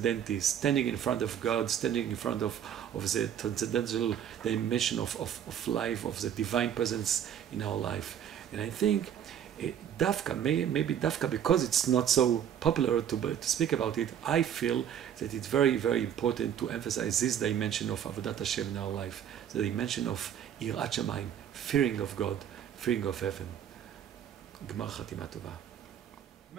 standing in front of God, standing in front of the transcendental dimension of life, of the divine presence in our life. And I think Dafka, maybe Dafka, because it's not so popular to speak about it, I feel that it's very, very important to emphasize this dimension of Avodat Hashem in our life, the dimension of Yirat Shamayim, fearing of God, fearing of heaven. Gmar Chatima Tova.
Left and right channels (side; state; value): left; quieter; 9.4 dB